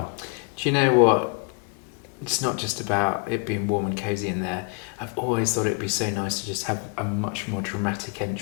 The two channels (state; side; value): quieter; right; 36.2 dB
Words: Do you know what? It's not just about it being warm and cosy in there. I've always thought it'd be so nice to just have a much more dramatic